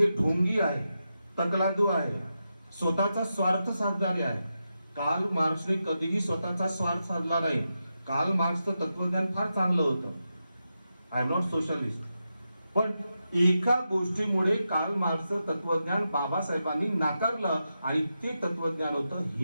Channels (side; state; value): both; inverted; correlation -0.88